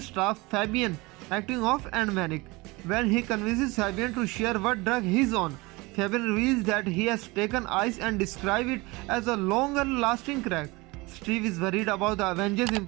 staff, Fabian, acting off and manic. When he convinces Fabian to share what drug he's on, Fabian reveals that he has taken ice and describes it as a longer-lasting crack. Steve is worried about the Avengers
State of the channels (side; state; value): left; quieter; 23.7 dB